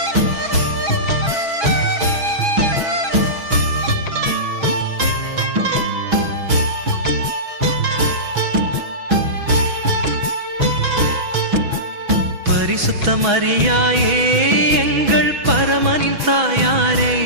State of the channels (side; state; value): left; late; 6.1 ms